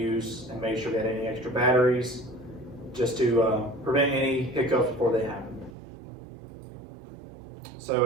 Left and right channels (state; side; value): drops out; left; at 5.8 s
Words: and made sure we had any extra batteries just to prevent any hiccups before they happened. So